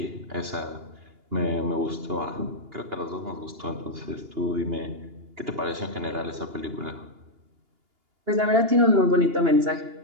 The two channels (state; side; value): late; left; 2.8 ms